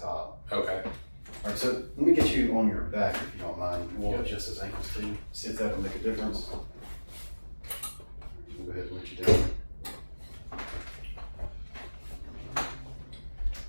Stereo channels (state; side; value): inverted; both; correlation -1.00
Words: top. Okay. All right, so let me get you on your back if you don't mind. We'll adjust his ankles too. See if that'll make a difference. Go ahead and let you down.